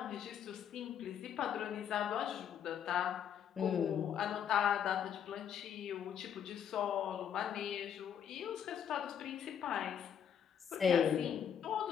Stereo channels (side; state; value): right; quieter; 8.5 dB